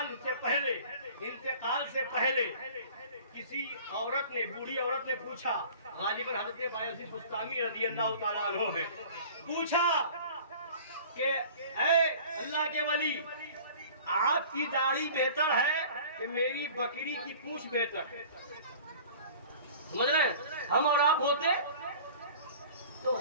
سے پہلے، انتقال سے پہلے کسی عورت نے، بوڑھی عورت نے پوچھا، غالباً حضرت بایزید بستامی رضی اللہ تعالیٰ عنہ ہے، پوچھا کہ اے اللہ کے ولی، آپ کی داڑھی بہتر ہے کہ میری بکری کی پونچھ بہتر ہے؟ سمجھ رہے ہیں؟ ہم اور آپ ہوتے تو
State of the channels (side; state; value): both; inverted; correlation -0.45